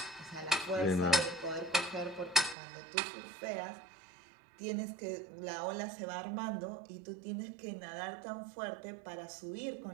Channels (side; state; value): left; drops out; at 2.6 s